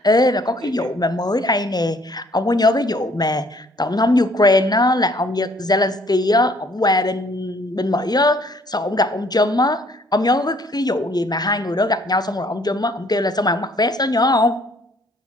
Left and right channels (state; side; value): normal; both; correlation 0.61